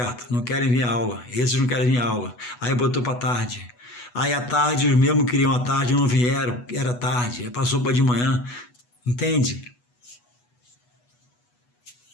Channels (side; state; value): right; late; 8.2 ms